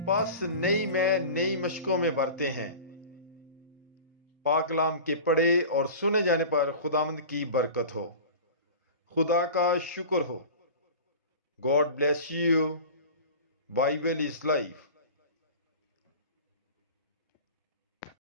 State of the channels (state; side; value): inverted; both; correlation -0.36